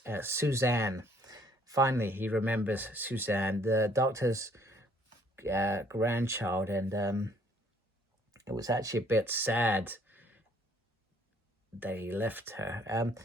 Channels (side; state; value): both; normal; correlation 0.62